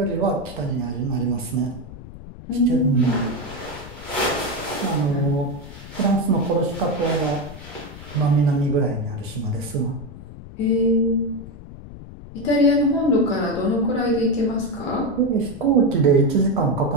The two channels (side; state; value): left; noise; rumble, 15 dB below the sound